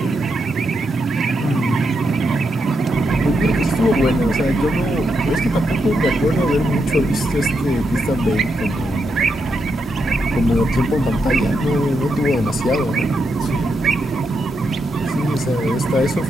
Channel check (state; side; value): normal; both; correlation 0.83